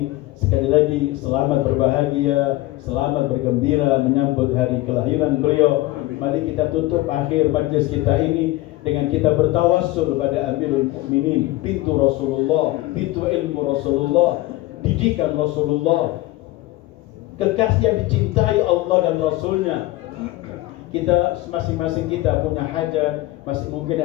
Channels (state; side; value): quieter; right; 18.1 dB